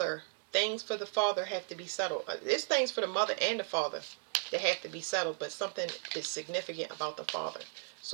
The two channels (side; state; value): left; silent; 54 dB below the other